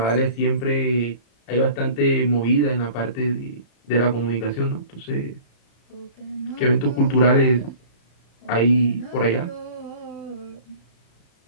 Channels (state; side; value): late; right; 35 ms